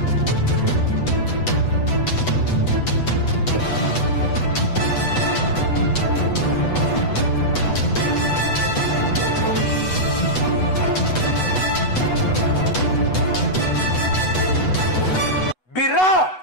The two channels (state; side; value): late; right; 8.1 ms